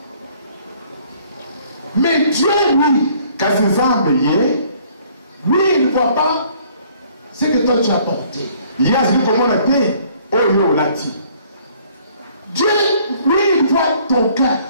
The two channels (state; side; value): inverted; both; correlation -0.60